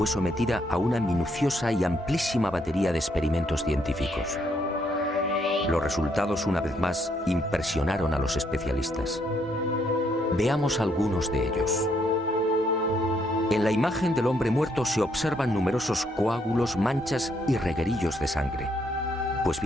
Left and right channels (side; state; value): both; normal; correlation 0.72